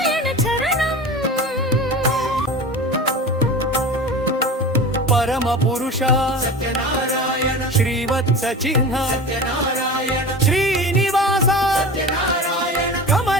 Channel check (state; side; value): normal; both; correlation 0.33